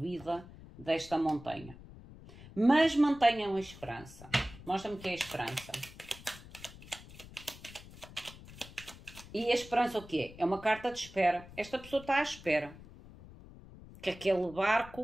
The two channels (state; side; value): noise; left; rumble, 18 dB below the sound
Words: desta montanha. Mas mantenham a esperança. Mostra-me que é a esperança. E a esperança o que é? É uma carta de espera. Esta pessoa está à espera que aquele